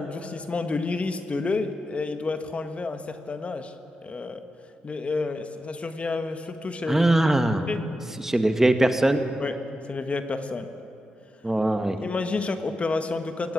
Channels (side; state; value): both; normal; correlation 0.90